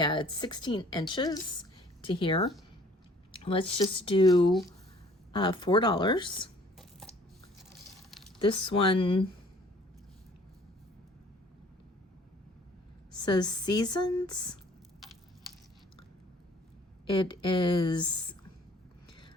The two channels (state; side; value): normal; both; correlation 0.55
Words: it's 16 inches to here. Let's just do $4. This one says Seasons. It is